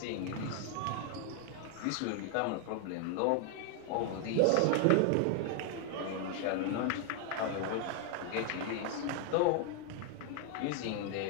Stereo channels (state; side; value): different; both; correlation 0.00